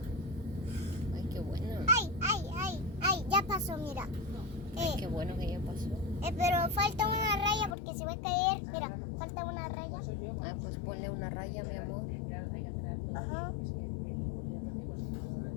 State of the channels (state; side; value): drops out; right; at 7.8 s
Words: Ay, qué bueno. ¡Ay! Ya pasó, mira. Ay, qué bueno que ya pasó. Pero falta una raya porque se va a caer. Mira, falta una raya. Ay, pues ponle una raya, mi amor. Ajá.